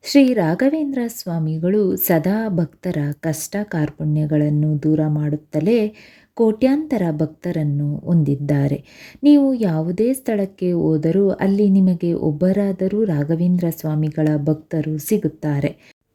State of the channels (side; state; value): both; identical; correlation 1.00